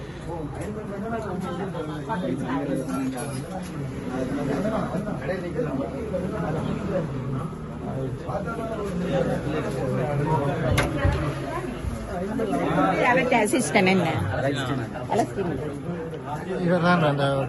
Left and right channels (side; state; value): both; identical; correlation 1.00